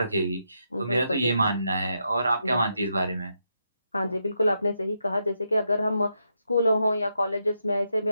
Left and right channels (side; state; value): both; inverted; correlation -0.82